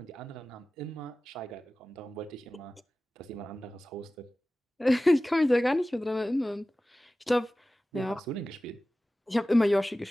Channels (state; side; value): normal; both; correlation 0.96